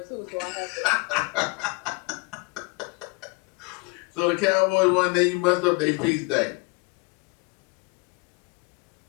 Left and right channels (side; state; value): right; quieter; 27.6 dB